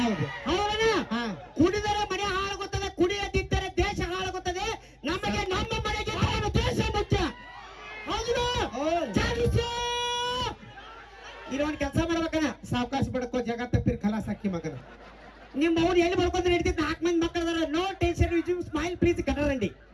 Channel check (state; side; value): identical; both; correlation 1.00